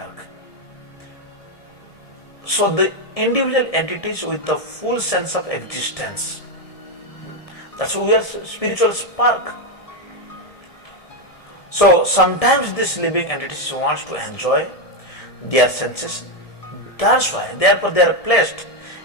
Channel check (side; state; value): right; late; 1.7 ms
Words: So the individual entities with the full sense of existence, that's why we are spiritual spark. So sometimes this living entities wants to enjoy their senses. That's why, therefore, they are placed